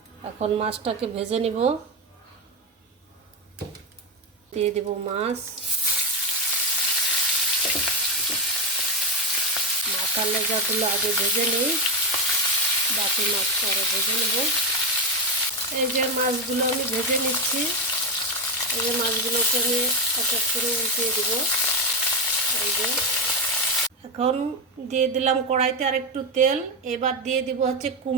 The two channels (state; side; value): normal; both; correlation 0.12